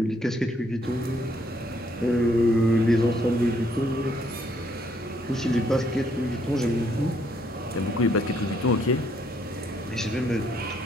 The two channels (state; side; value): normal; both; correlation 0.70